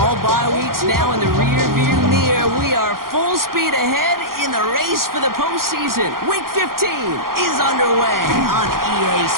bye weeks now in the rear-view mirror. We are full speed ahead in the race for the postseason. Week 15 is underway on EA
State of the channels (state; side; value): late; left; 0.92 ms